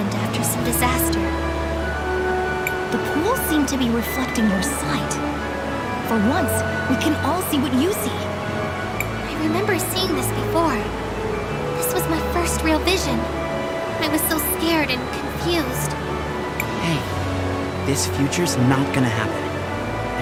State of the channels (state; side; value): identical; both; correlation 1.00